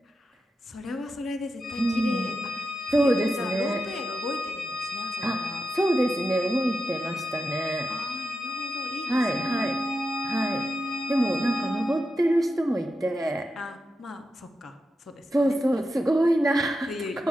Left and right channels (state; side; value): normal; both; correlation 0.88